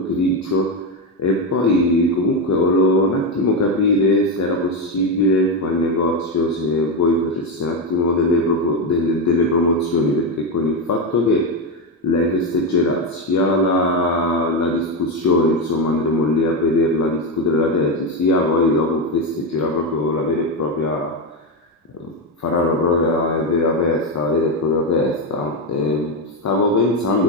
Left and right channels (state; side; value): normal; both; correlation 0.10